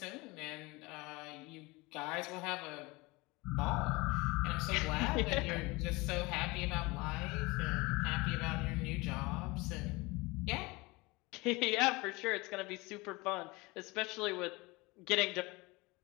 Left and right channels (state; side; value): quieter; right; 23.8 dB